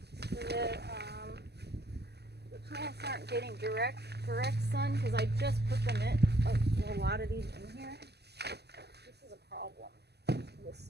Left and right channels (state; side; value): late; left; 0.48 ms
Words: so that the plants aren't getting direct sun, because I just put them in a lot of these in here. This is a problem. This